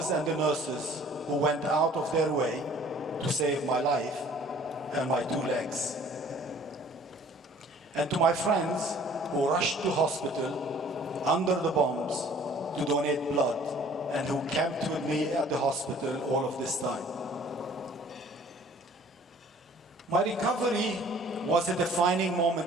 and the nurses who went out of their way to save my life and my 2 legs. And to my friends who rushed to hospital under the bombs to donate blood and who camped with me at the hospital all of this time. My recovery was a defining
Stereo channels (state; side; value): normal; both; correlation 0.53